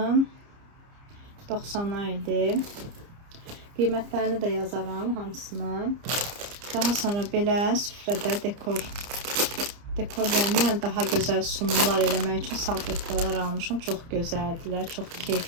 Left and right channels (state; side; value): late; left; 30 ms